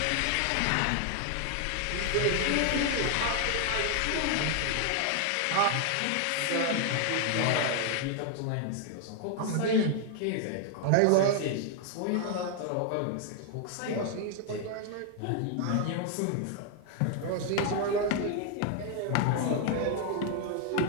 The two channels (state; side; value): different; both; correlation 0.00